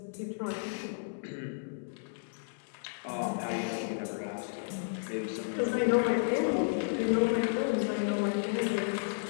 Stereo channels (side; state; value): right; silent; digital silence